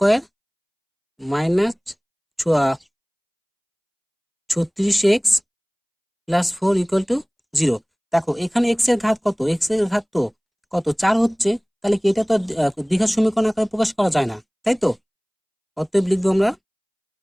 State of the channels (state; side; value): identical; both; correlation 1.00